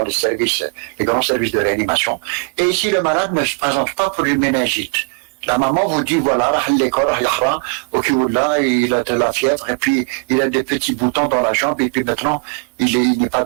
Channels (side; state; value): left; quieter; 34.8 dB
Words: les grands services de réanimation. Et ici, le malade ne se présente pas pour une méningite. La maman vous dit, voilà, ok, là, il a de la fièvre, et puis il a des petits boutons dans la jambe, et puis maintenant, il n'est pas